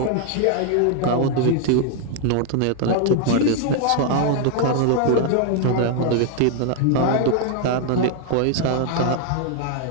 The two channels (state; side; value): different; both; correlation 0.00